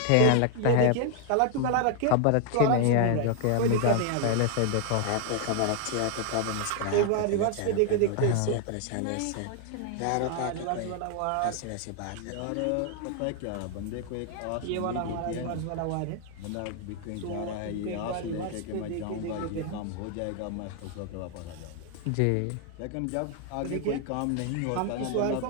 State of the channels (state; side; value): different; both; correlation 0.00